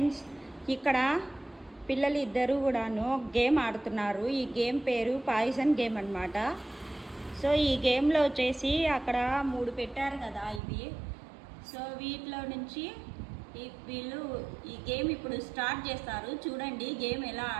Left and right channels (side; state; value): left; drops out; at 10.6 s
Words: ఇక్కడ పిల్లలు ఇద్దరు కూడాను గేమ్ ఆడుతున్నారు. ఈ గేమ్ పేరు పాయిజన్ గేమ్ అన్నమాట. సో ఈ గేమ్లో వచ్చేసి అక్కడ 3 పెట్టారు కదా ఇవి. సో వీటిలో నుంచి వీళ్ళు ఈ గేమ్ ఇప్పుడు స్టార్ట్ చేస్తారు. చూడండి గేమ్ ఎలా